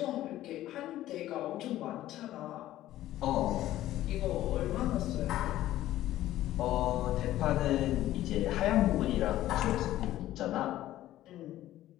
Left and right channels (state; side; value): quieter; right; 14.2 dB